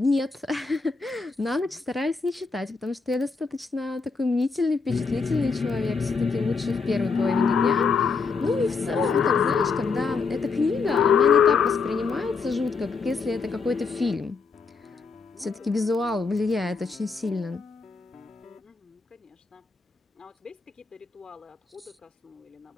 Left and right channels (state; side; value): quieter; right; 4.8 dB